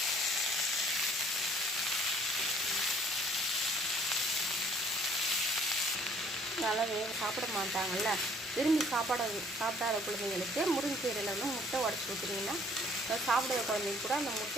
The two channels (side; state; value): both; normal; correlation 0.59